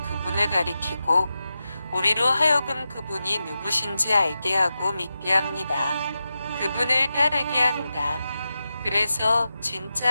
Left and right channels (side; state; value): both; inverted; correlation -0.91